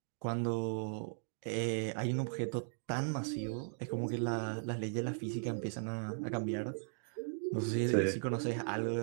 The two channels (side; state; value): left; silent; digital silence